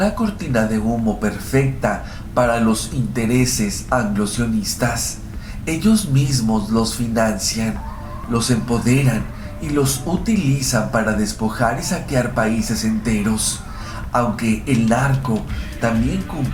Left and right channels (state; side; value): identical; both; correlation 1.00